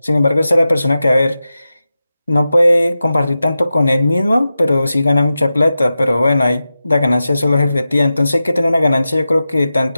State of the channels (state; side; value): inverted; both; correlation -0.92